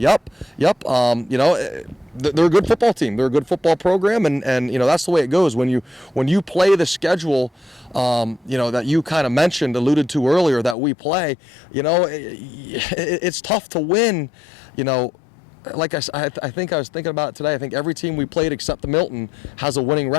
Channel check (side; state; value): right; drops out; at 10.8 s